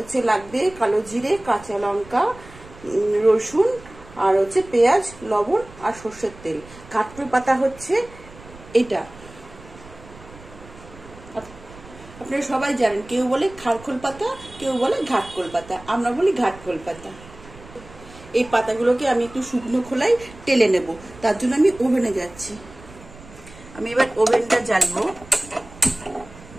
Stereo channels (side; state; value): right; noise; rumble, 20 dB below the sound